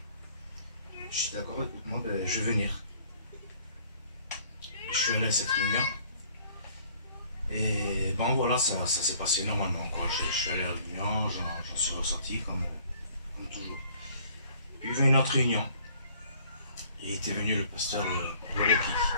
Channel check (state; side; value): inverted; both; correlation -0.57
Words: Je suis d'accord, écoute-moi, je vais venir. Je suis allé à cette réunion. Et bon voilà, ça s'est passé normalement, quoi. Je suis allé à la réunion, j'en suis ressorti comme toujours. Puis il y avait une autre réunion. Et était venu le pasteur Loki.